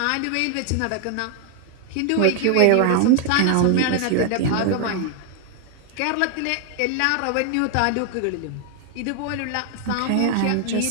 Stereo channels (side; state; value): both; different; correlation 0.00